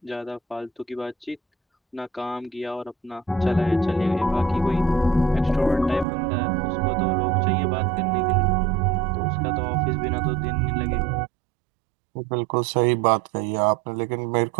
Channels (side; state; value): left; drops out; at 6.1 s